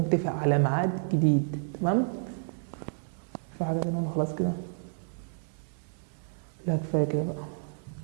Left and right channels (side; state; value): left; silent; 58 dB below the other